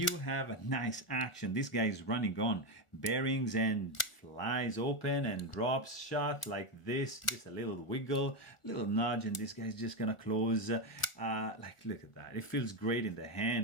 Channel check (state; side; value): late; right; 1.4 ms